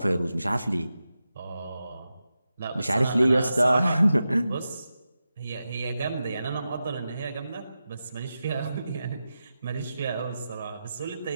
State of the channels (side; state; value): both; inverted; correlation -0.91